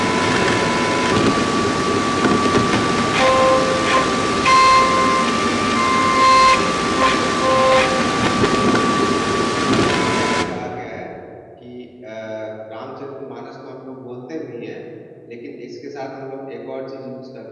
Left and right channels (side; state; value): both; identical; correlation 1.00